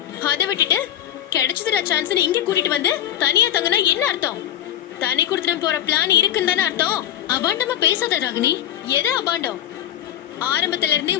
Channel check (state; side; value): quieter; right; 11.3 dB